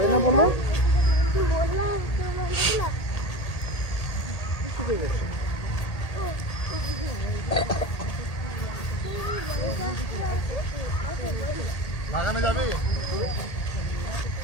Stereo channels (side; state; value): right; late; 1.8 ms